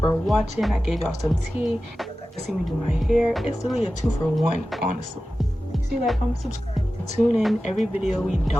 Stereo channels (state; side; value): normal; both; correlation 0.94